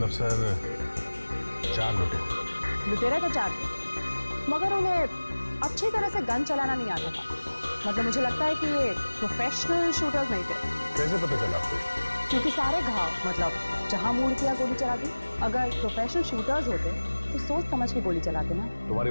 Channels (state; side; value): inverted; both; correlation -1.00